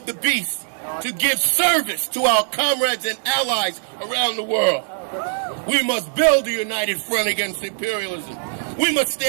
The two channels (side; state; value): left; silent; digital silence